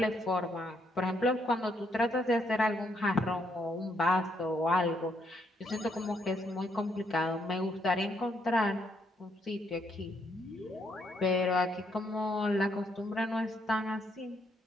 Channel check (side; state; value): both; normal; correlation 0.74